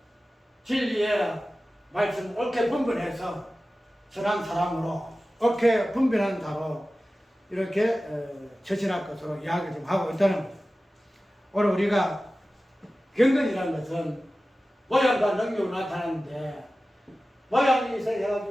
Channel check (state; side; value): normal; both; correlation 0.96